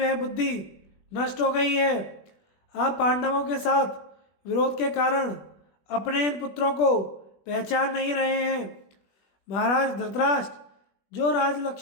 बुद्धि नष्ट हो गई है। आप पांडवों के साथ विरोध के कारण अपने इन पुत्रों को पहचान नहीं रहे हैं। महाराज धृतराष्ट्र, जो राज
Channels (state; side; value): late; right; 21 ms